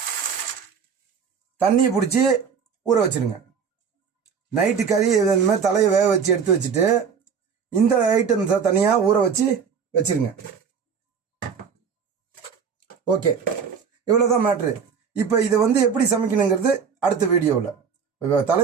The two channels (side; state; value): left; quieter; 6.5 dB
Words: தண்ணியை பிடிச்சி ஊற வச்சிருங்க. நைட்டு கறி இந்த மாதிரி தலையை வேக வச்சு எடுத்து வச்சுட்டு இந்த ஐட்டம்ஸை தனியாக ஊற வச்சு வச்சிருங்க. ஓகே, இவ்வளோதான் மேட்ரு. இப்போ இதை எப்படி சமைக்கணுங்கிறது அடுத்த வீடியோவில். இப்போ